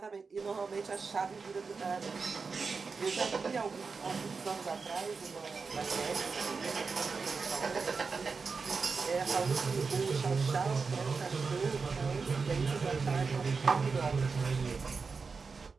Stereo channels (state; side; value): quieter; left; 4.8 dB